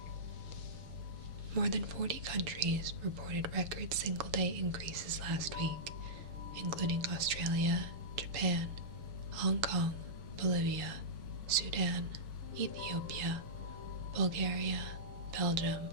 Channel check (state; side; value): late; left; 7.0 ms